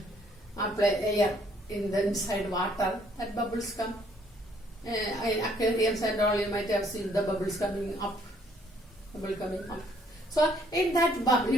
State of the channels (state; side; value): normal; both; correlation 0.65